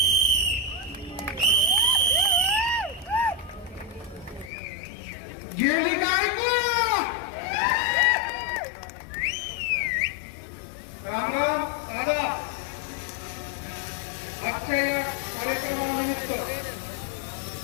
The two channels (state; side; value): drops out; right; at 4.5 s